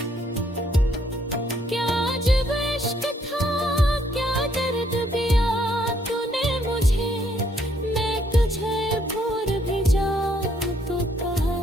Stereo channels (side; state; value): both; normal; correlation 0.69